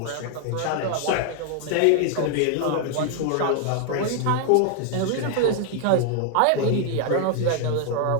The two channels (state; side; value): different; both; correlation 0.00